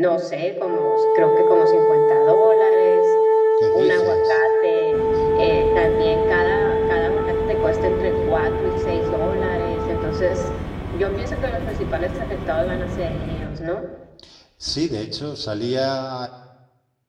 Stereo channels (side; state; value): both; identical; correlation 1.00